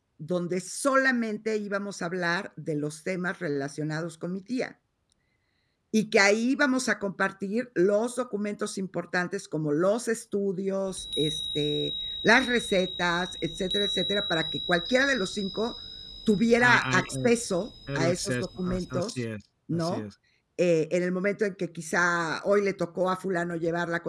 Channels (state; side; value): identical; both; correlation 1.00